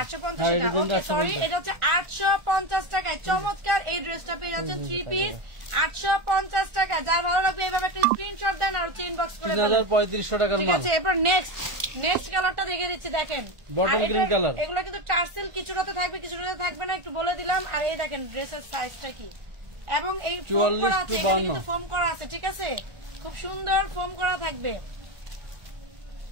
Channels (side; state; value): left; late; 1.4 ms